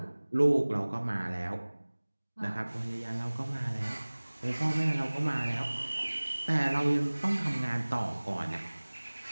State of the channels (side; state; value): both; inverted; correlation -1.00